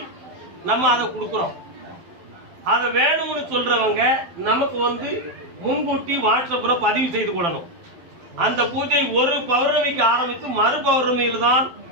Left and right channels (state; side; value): late; left; 12 ms